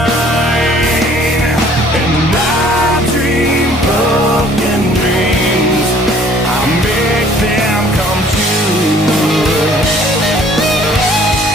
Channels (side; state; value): both; normal; correlation 0.57